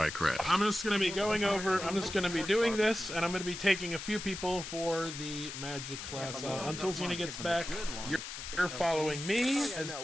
crash. I'm just gonna be going over. I'm just gonna be doing this, and I'm gonna be taking a few people for the magic class. Until Xena gets back, you're following me as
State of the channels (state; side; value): noise; left; hiss, 8 dB below the sound